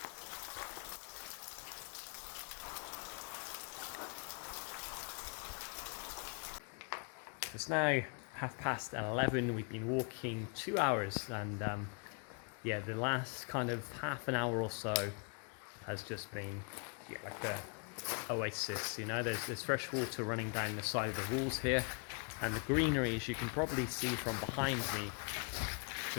It's now 11:30. We've been walking 2 hours, and yeah, the last kind of half an hour or so has just been like a oasis. You know, there's fresh water running down the side of the walls here, and the greenery, as you can probably see from behind me,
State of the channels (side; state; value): right; quieter; 38.9 dB